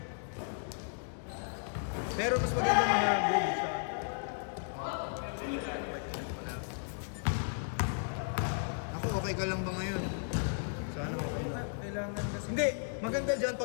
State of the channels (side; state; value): right; silent; digital silence